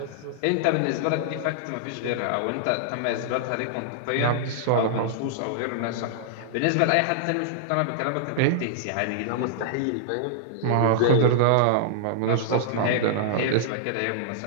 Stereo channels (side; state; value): both; different; correlation -0.01